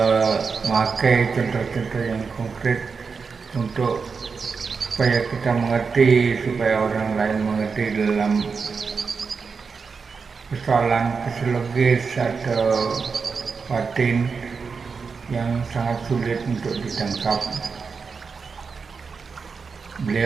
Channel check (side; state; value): left; quieter; 5.2 dB